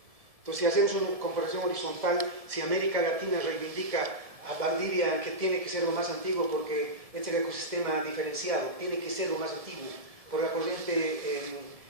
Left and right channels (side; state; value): left; late; 1.7 ms